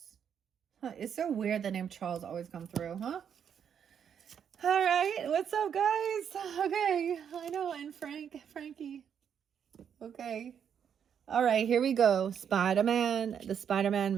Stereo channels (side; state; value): left; quieter; 8.1 dB